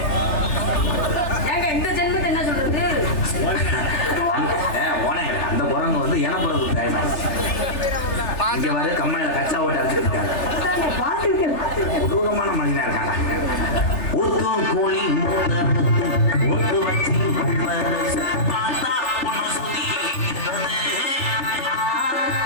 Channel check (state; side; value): late; right; 3.3 ms